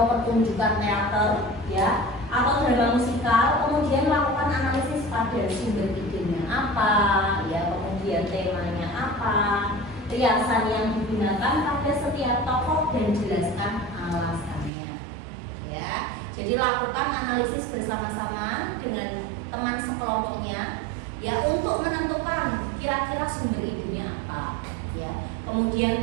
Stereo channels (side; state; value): left; drops out; at 14.7 s